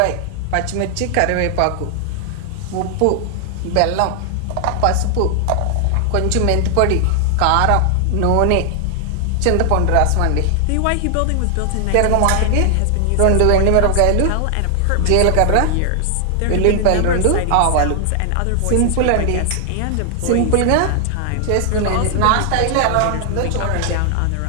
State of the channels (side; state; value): both; different; correlation 0.00